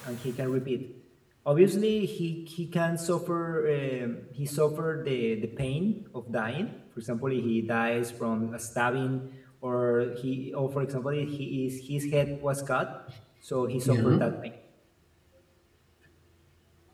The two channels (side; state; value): both; identical; correlation 1.00